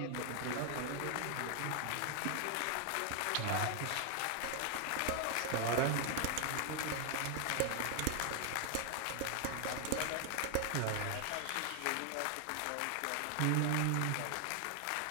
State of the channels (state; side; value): different; both; correlation 0.00